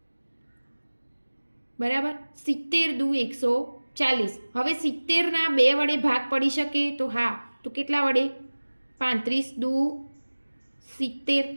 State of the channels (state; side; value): inverted; both; correlation -1.00